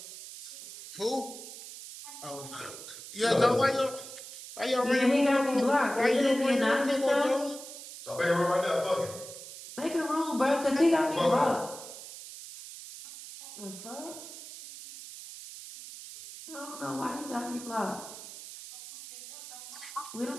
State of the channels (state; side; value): noise; right; hiss, 13 dB below the sound